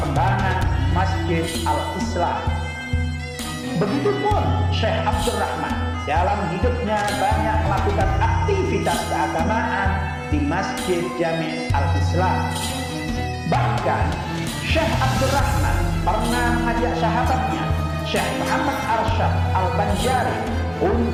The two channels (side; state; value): both; identical; correlation 1.00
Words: Masjid Al-Islam. Begitupun Syekh Abdurrahman dalam hidupnya banyak melakukan aktivitas keagamaan di Masjid Jami Al-Islam. Bahkan Syekh Abdurrahman pernah mengajak sahabatnya Syekh Muhammad Arsyad Al-Banjari